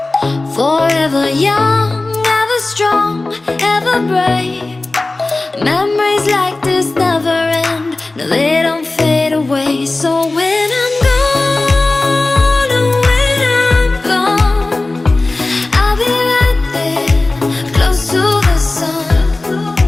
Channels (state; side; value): quieter; right; 3.1 dB